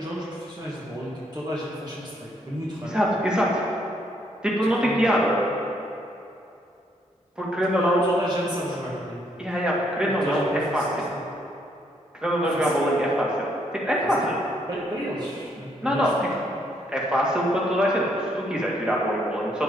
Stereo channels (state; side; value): normal; both; correlation 0.71